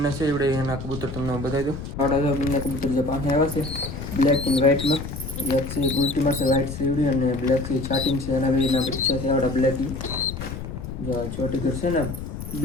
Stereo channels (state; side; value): noise; left; rumble, 8 dB below the sound